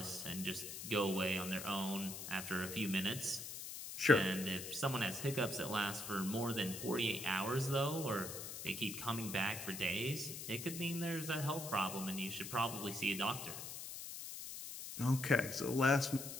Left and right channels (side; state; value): left; noise; hiss, 8 dB below the sound